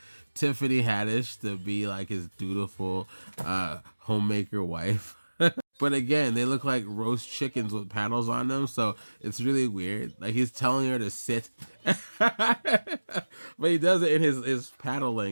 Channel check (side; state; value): both; inverted; correlation -1.00